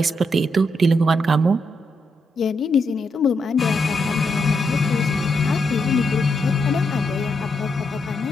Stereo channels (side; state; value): both; normal; correlation 0.81